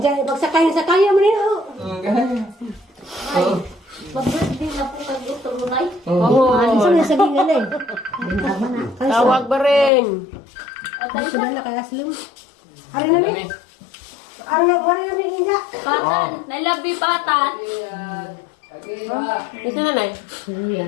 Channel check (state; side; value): drops out; right; at 9.9 s